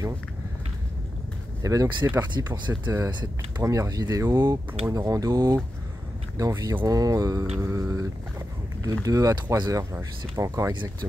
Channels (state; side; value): normal; both; correlation 0.90